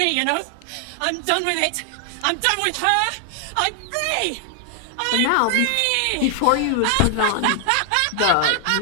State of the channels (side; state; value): both; different; correlation 0.00